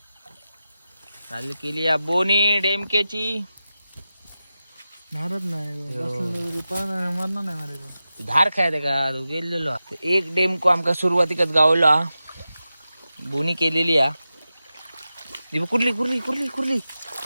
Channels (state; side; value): inverted; both; correlation -0.92